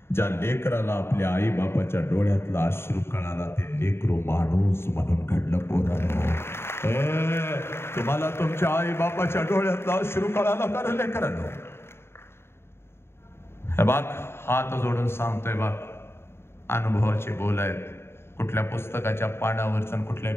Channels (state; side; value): late; right; 0.12 ms